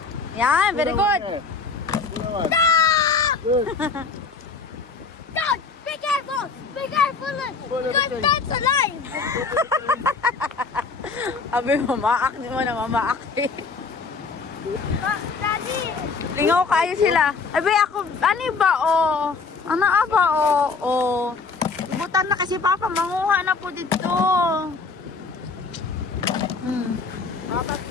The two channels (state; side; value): quieter; right; 4.6 dB